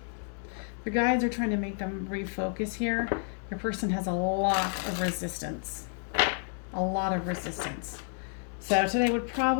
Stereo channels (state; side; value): silent; right; 58 dB below the other